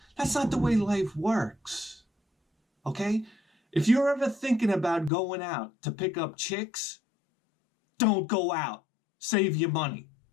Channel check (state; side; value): drops out; right; at 5.1 s